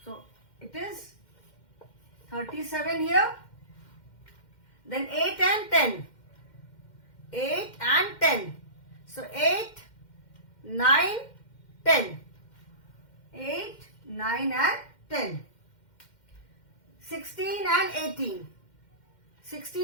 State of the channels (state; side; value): late; right; 2.1 ms